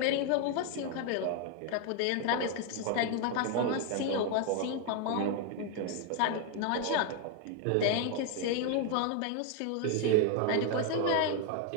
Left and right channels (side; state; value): both; different; correlation 0.01